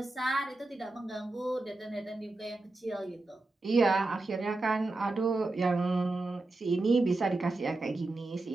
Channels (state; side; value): quieter; left; 3.0 dB